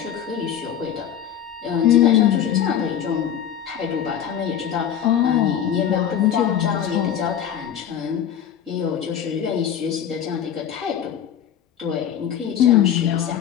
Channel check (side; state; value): right; quieter; 9.5 dB